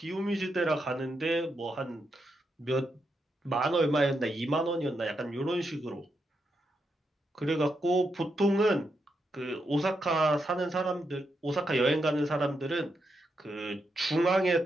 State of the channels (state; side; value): normal; both; correlation 0.83